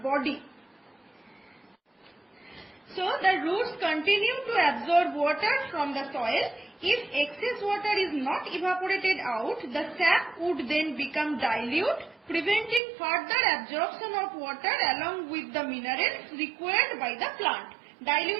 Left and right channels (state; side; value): drops out; left; at 12.8 s